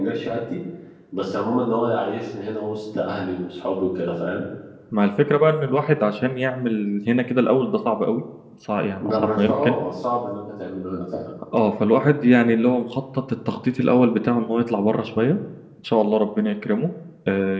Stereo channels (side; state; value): both; identical; correlation 1.00